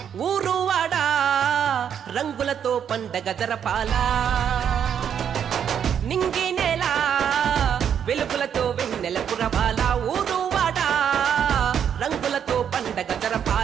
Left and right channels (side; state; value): left; quieter; 8.4 dB